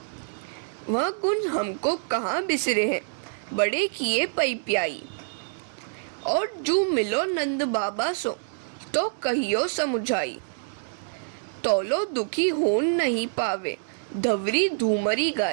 वह गुण हमको कहाँ बिसरे हैं, बड़े किए पई प्याई। और जो मिलो नंद बाबा सो, तो कहियो समुझाई। तोलो दुखी होन नहीं पावे, धवरी धूमरी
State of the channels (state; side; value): silent; left; digital silence